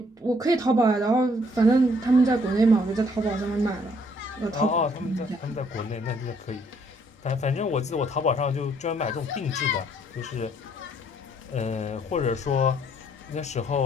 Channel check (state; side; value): normal; both; correlation 0.66